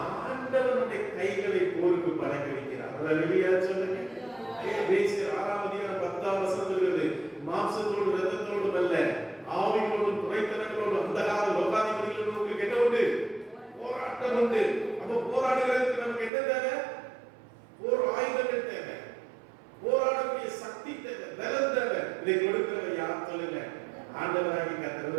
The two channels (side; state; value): left; drops out; at 16.3 s